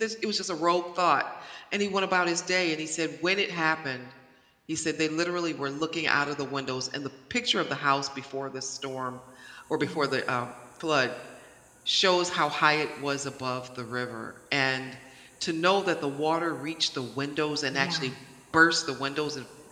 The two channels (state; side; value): identical; both; correlation 1.00